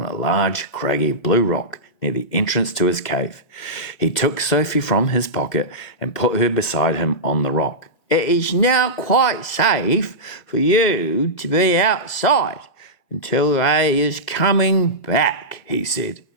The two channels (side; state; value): right; late; 2.1 ms